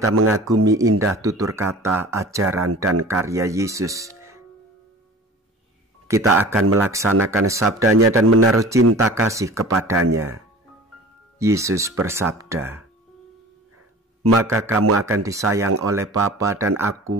mengagumi indah tutur kata, ajaran, dan karya Yesus. Kita akan melaksanakan sabdanya dan menaruh cinta kasih kepadanya. Yesus bersabda, "Maka kamu akan disayang oleh Bapa dan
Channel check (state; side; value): normal; both; correlation 0.41